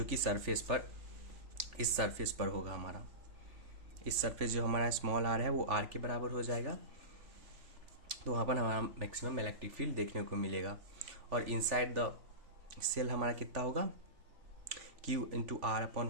कि सरफेस पर इस सरफेस पर होगा हमारा। इस सरफेस जो हमारा स्मॉल आर है वो आर के बराबर हो जाएगा, तो वहाँ पर हमारा मैक्सिमम इलेक्ट्रिक फील्ड देखने को मिलेगा। और इनसाइड द सेल हमारा कितना होगा Q into R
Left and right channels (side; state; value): left; late; 3.4 ms